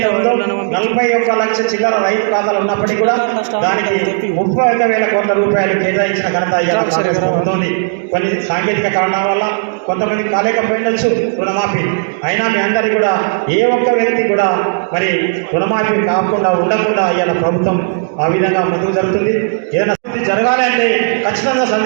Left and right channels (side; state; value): left; silent; digital silence